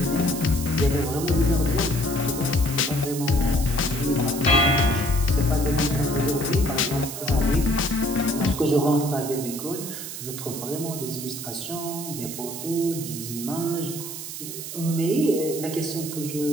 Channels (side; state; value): right; noise; hiss, 8 dB below the sound